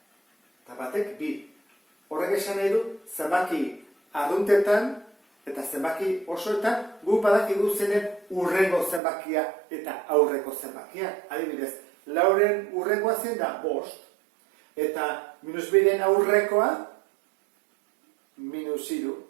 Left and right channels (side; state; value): left; drops out; at 9.0 s